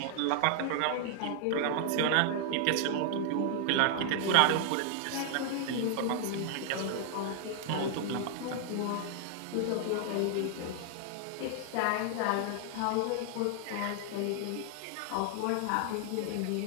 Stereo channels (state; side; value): different; both; correlation 0.00